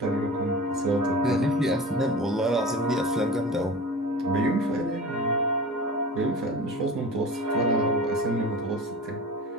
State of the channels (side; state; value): both; normal; correlation 0.35